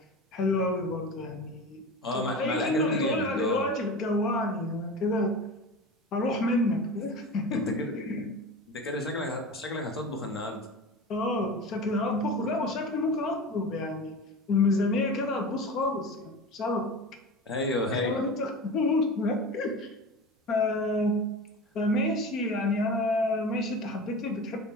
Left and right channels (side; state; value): both; normal; correlation 0.31